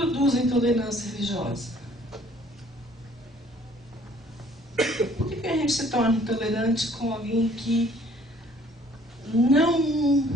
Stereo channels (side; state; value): both; normal; correlation 0.58